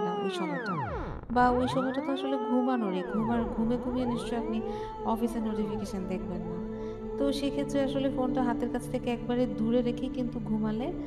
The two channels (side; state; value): both; identical; correlation 1.00